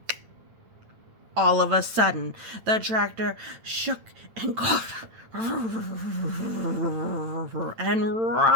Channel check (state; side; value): late; left; 8.9 ms